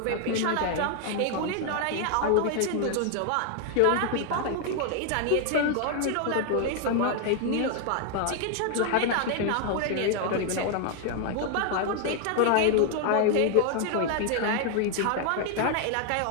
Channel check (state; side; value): different; both; correlation 0.00